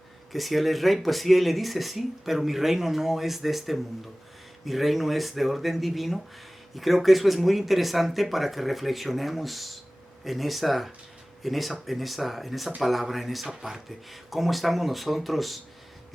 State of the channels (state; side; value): normal; both; correlation 0.98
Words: que si Él es Rey, pues sí, Él le dice sí, pero mi reino no es de este mundo. Mi reino es de orden divino, y creo que eso es muy interesante para que reflexionemos en esa palabra, en esa parte. ¿Cómo estamos nosotros